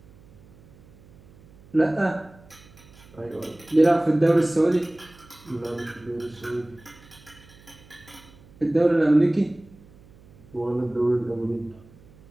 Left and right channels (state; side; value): noise; right; hum, 25 dB below the sound